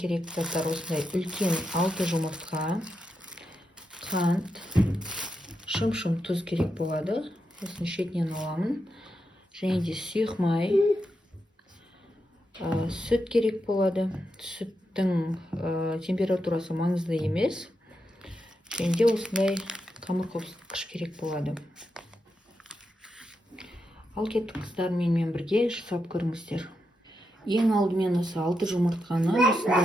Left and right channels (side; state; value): both; normal; correlation 0.85